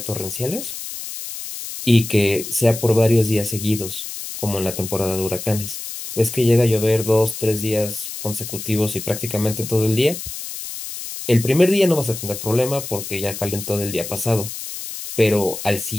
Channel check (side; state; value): left; noise; hiss, 9 dB below the sound